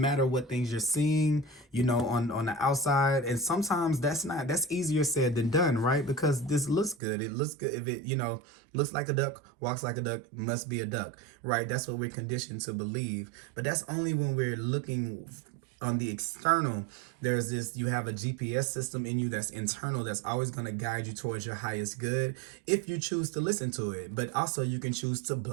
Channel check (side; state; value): left; drops out; at 7.0 s